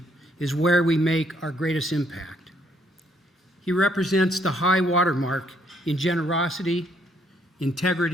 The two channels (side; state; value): both; normal; correlation 0.69